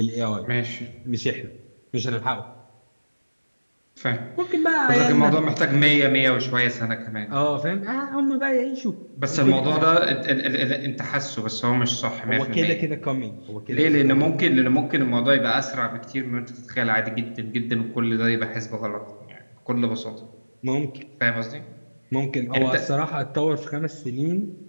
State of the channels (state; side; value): inverted; both; correlation -1.00